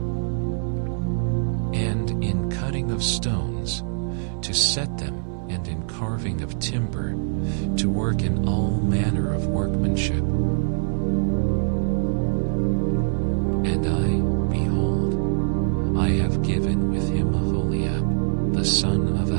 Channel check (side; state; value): left; silent; digital silence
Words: and in cutting of stones, to set them, and in carving of timber, to work in all manner of workmanship. And I, behold, I have given with him Aholiab, the son of